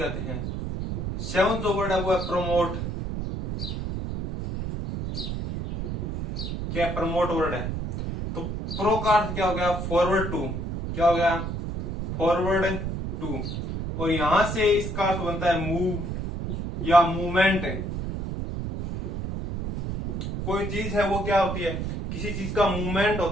हैं। सेवंथ जो वर्ड है वो है प्रमोट। क्या प्रमोट वर्ड है। तो प्रो का अर्थ क्या हो गया, फॉरवर्ड टू। क्या हो गया, फॉरवर्ड टू, और यहां से इसका अर्थ बनता है मूव या मूवमेंट। कोई चीज है वो क्या होती है, किसी चीज का मूवमेंट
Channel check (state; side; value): noise; right; rumble, 4 dB below the sound